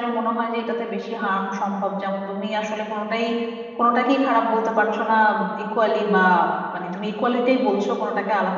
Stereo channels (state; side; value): identical; both; correlation 1.00